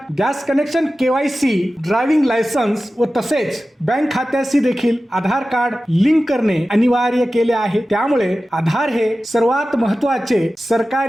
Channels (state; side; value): normal; both; correlation 0.95